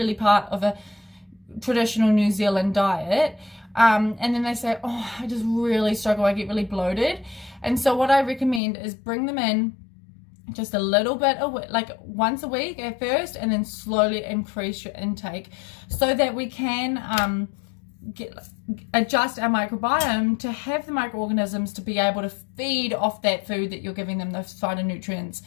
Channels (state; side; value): drops out; right; at 8.6 s